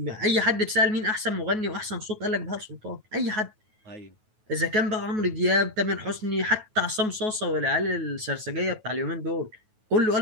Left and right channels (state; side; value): late; left; 9.3 ms